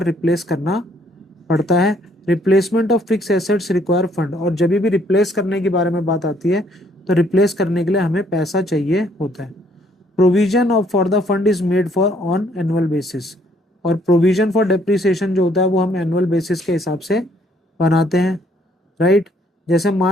replace करना पड़ता है। Replacement of fixed assets require fund, और जब भी replace करने के बारे में बात आती है तो replace करने के लिए हमें पैसा चाहिए होता है। Provision of for the fund is made for on annual basis, और provision for depreciation जो होता है वो हम annual basis के हिसाब से बनाते हैं, राइट। जैसे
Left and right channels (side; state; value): both; normal; correlation 0.66